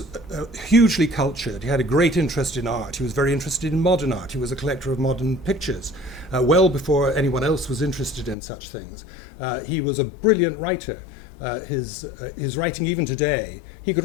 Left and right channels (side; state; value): right; drops out; at 8.3 s